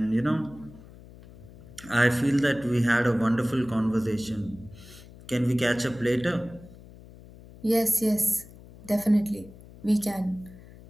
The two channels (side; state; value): left; noise; hum, 20 dB below the sound